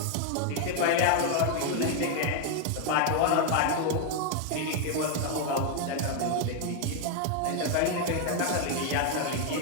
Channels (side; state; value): both; different; correlation 0.01